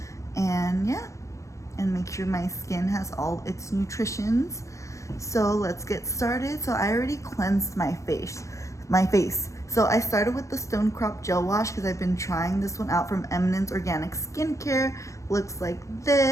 and yeah, and make sure my skin has all its nutritions. So let's get started. So I already cleansed my face. So I started with the Stone Crop Gel Wash because I've been trying this one out from Eminence Organic Skincare. Looks like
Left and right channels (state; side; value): late; right; 0.15 ms